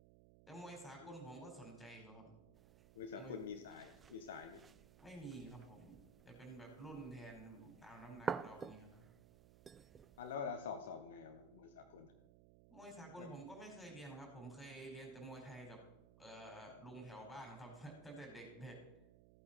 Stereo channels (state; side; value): noise; right; hum, 16 dB below the sound